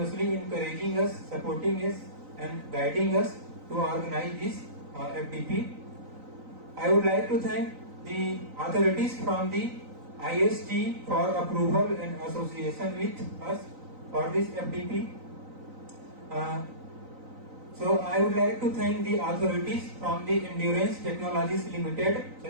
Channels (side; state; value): left; late; 3.9 ms